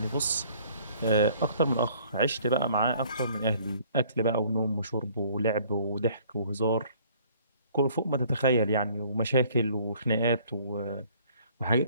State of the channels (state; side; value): inverted; both; correlation -0.58